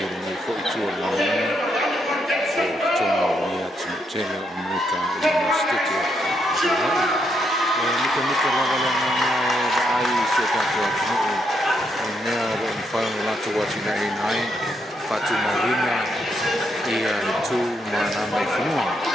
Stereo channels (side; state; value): both; normal; correlation 0.78